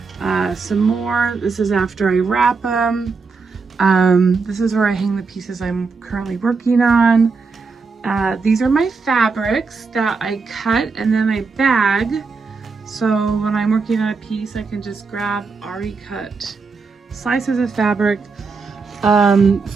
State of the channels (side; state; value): left; quieter; 4.6 dB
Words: some more. This is after I wrap them. This is where I hang the pieces I'm currently working on. These are my fabrics that I cut and then I bag. So when I'm working on a piece, I can just grab already cut slices of fabric.